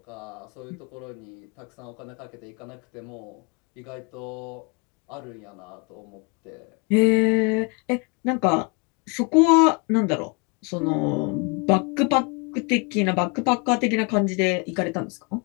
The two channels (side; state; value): right; quieter; 31.5 dB